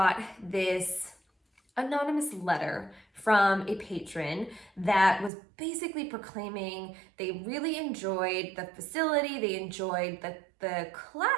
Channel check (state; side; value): drops out; left; at 5.3 s